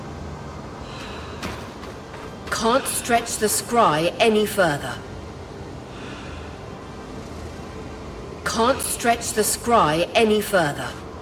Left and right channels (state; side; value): identical; both; correlation 1.00